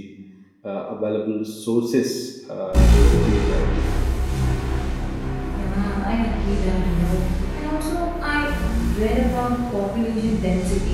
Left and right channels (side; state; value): both; identical; correlation 1.00